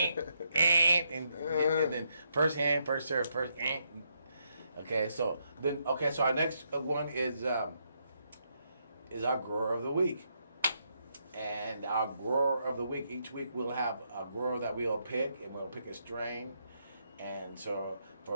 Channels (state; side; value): inverted; both; correlation -0.77